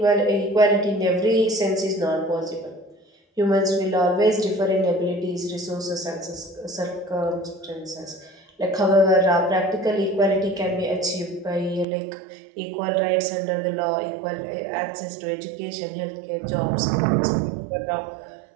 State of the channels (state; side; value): drops out; left; at 11.9 s